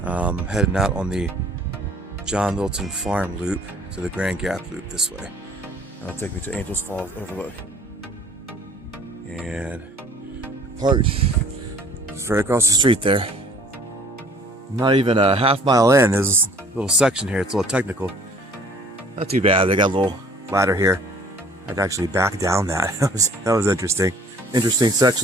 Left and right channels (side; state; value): both; normal; correlation 0.53